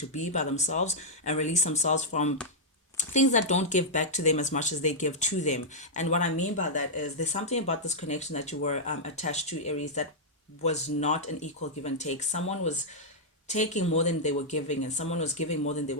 be by themselves and release themselves from things that don't give back to them as much as they give to them. And what I mean by that is, there's something about this connection that you were attached to, Aries, that was not an equal give and take. Someone was taking more than they were giving, and someone was giving more than they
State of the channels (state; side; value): normal; both; correlation -0.07